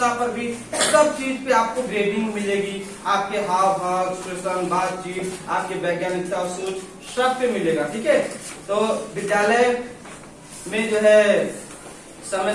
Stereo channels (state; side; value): identical; both; correlation 1.00